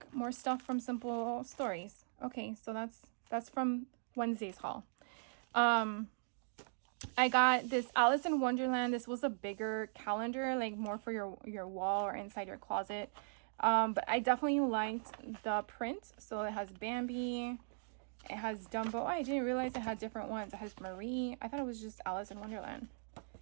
more stuff from Simple Stories. Okay, so that's from Wednesday's haul. I got this Alice in Wonderland. This was a bigger calendar, like more for your wall or inside your closet. But I definitely liked the print. So it has Bambi, it has Dumbo. Oh, I didn't realize it had different ones. It has Marie. I thought it was just Alice in Wonderland.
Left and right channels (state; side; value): silent; left; digital silence